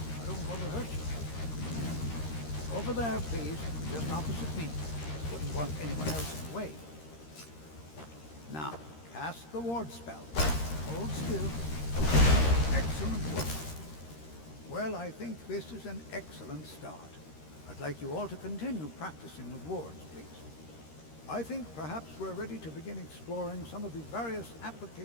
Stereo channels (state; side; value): late; right; 13 ms